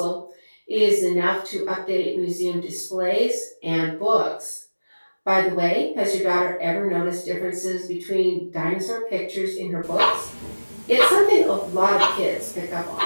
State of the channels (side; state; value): both; inverted; correlation -1.00